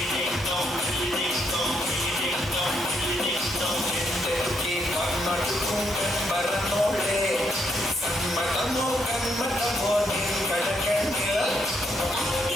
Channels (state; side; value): normal; both; correlation 0.76